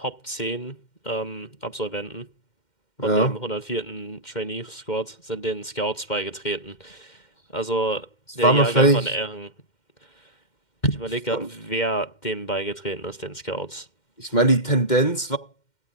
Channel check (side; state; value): right; late; 2.1 ms